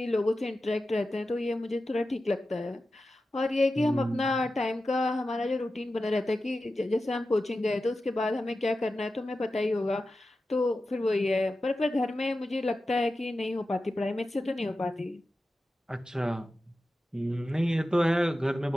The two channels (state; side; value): normal; both; correlation 0.93